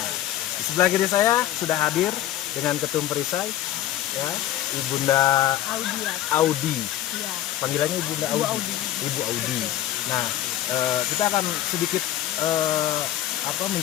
di sebelah kiri saya sudah hadir dengan ketum Perisai, ya, Ibunda Audi. Ya. Panggilannya Ibunda Audi. Ibu Audi. Nah, kita akan sedikit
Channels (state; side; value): quieter; right; 13.3 dB